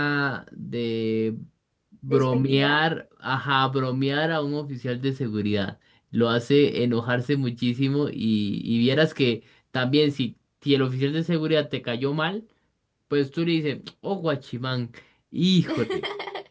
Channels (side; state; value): both; identical; correlation 1.00